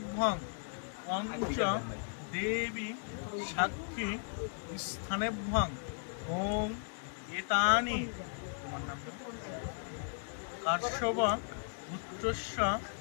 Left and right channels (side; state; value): right; silent; digital silence